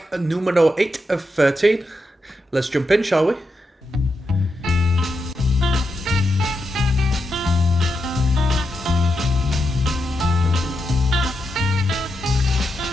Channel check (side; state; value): both; normal; correlation 0.85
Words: numero 8 of 13. Let's jump in, shall we?